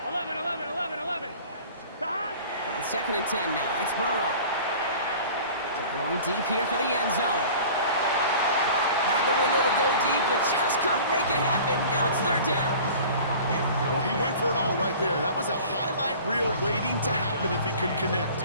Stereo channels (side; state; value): both; inverted; correlation -0.43